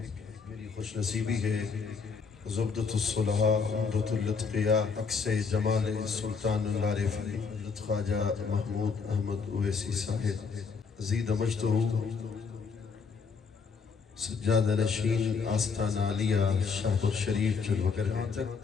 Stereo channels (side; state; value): right; quieter; 5.3 dB